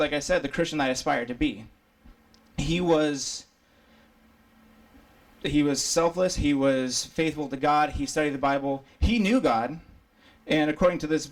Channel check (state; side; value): identical; both; correlation 1.00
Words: like I said, the Christian that I aspired to be. He was selfless. He was faithful to God. He studied the Bible. He knew God. And according to this